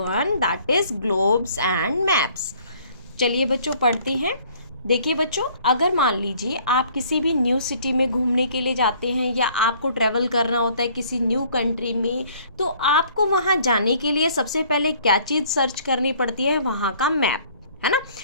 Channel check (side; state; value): both; inverted; correlation -0.57